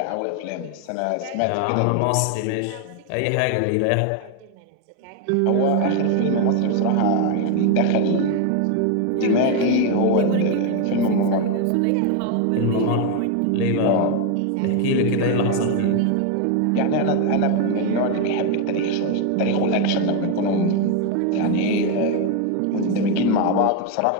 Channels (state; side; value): different; both; correlation 0.01